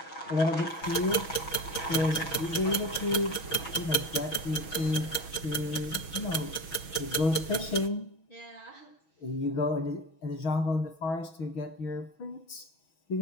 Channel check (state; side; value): late; right; 6.2 ms